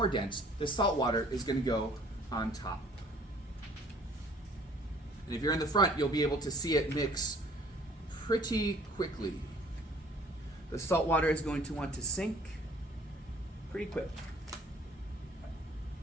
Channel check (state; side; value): normal; both; correlation 0.55